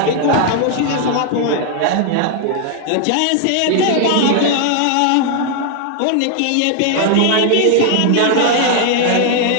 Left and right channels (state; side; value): different; both; correlation 0.00